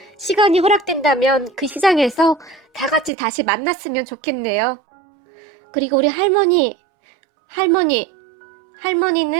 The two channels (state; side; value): drops out; left; at 3.1 s